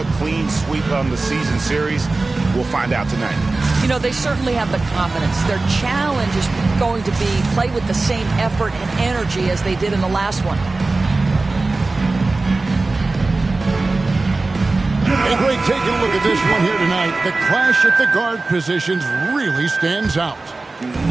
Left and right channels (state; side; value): quieter; left; 3.4 dB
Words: clean sweep on the season series? We'll find out tonight. You know, they certainly have the confidence. Their challenge is going to be play with the same effort and energy as they did in the last one. Hey, Greg, taking a look at this one here tonight. The clash at the guard positions really stands out.